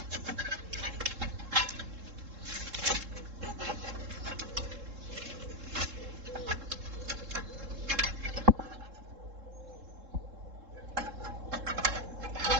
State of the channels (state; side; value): late; left; 3.7 ms